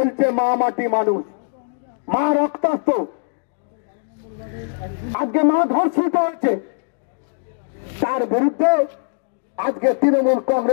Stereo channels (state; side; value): silent; right; digital silence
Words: মা মাটি মানুষ, মা রক্তাক্ত, আজকে মা ধর্ষিত হচ্ছে। তার বিরুদ্ধে আজকে তৃণমূল